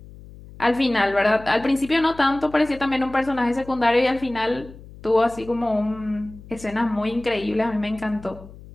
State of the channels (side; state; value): left; noise; hum, 18 dB below the sound